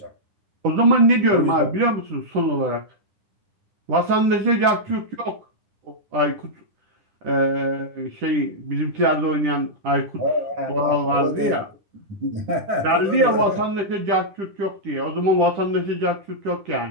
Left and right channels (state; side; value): late; left; 10 ms